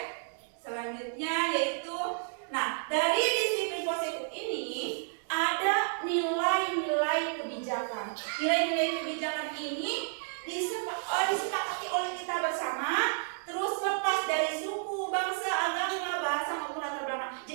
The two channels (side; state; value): left; silent; digital silence